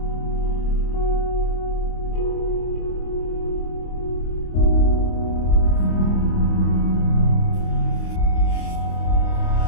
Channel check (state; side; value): late; right; 26 ms